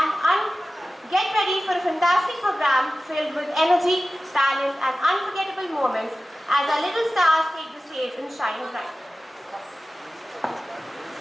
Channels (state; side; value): normal; both; correlation 0.95